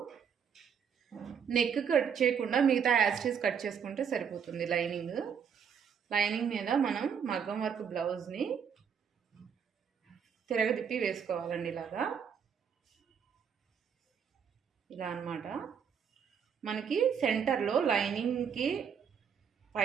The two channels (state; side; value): quieter; left; 7.3 dB